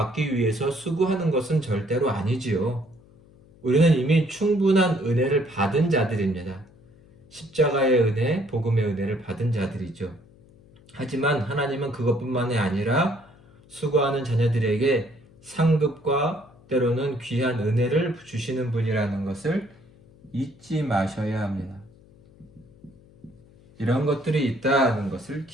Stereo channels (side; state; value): left; noise; hum, 26 dB below the sound